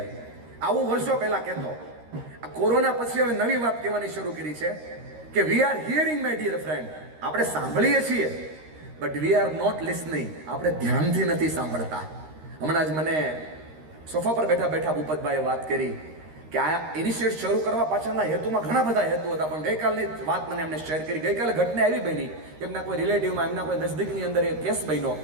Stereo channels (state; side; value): late; left; 13 ms